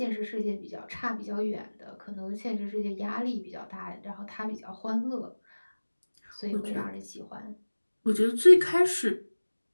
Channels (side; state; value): both; inverted; correlation -1.00